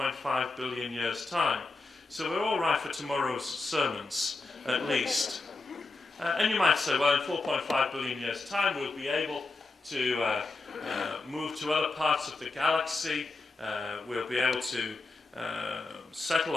billion years' time, so we're all right for tomorrow's sermons, at least. And you might say, well, in 4.5 billion years' time we'll be able to move to other parts of the galaxy, we'll be able to settle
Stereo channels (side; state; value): right; quieter; 3.5 dB